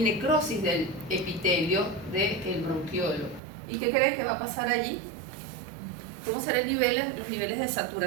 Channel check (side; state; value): left; drops out; at 3.4 s